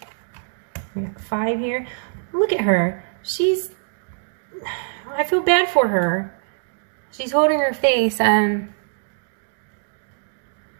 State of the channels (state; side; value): silent; left; digital silence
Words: We got 5 here. Look at her. I feel bad for her. She's holding her face. I